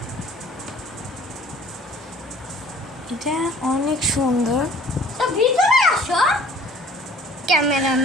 এটা অনেক সুন্দর। তো ভিতরে আসো।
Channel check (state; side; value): normal; both; correlation 0.53